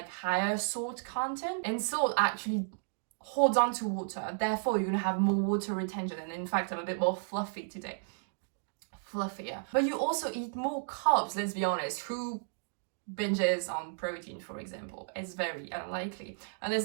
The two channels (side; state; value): left; silent; digital silence